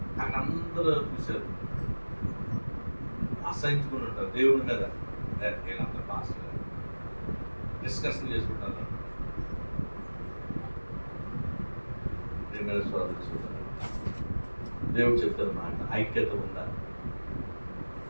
నాకు అందరూ చూశారు, అసహించుకుని ఉంటారు దేవుడి మీద. వీళ్ళందరూ పాస్టర్ డిస్కషన్ చేసుకుంటారు. దేవుడు చెప్తారు మాట, ఐక్యత ఉందా?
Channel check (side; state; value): both; inverted; correlation -1.00